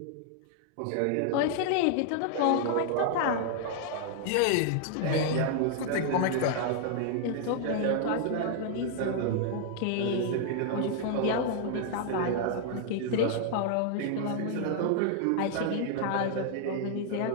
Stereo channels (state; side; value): different; both; correlation 0.00